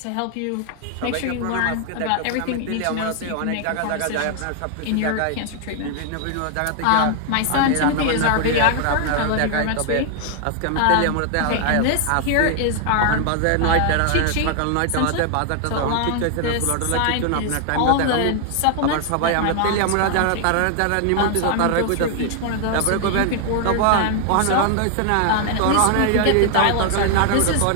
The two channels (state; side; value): different; both; correlation 0.00